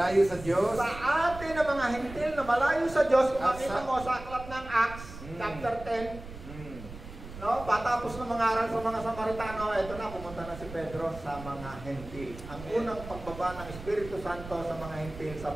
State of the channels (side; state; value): right; noise; rumble, 13 dB below the sound